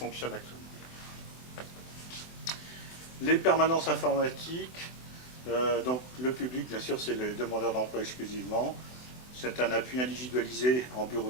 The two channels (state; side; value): late; right; 24 ms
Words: actuellement. Les permanences informatiques, donc le public, bien sûr, c'est les demandeurs d'emploi exclusivement. C'est un appui individualisé en